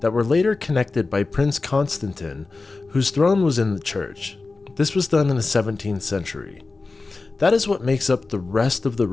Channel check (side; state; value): right; quieter; 3.7 dB